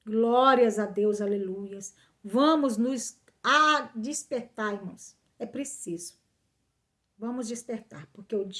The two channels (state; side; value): identical; both; correlation 1.00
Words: Glórias a Deus, aleluias. Vamos nos despertar, irmãos. É preciso. Vamos despertar, porque o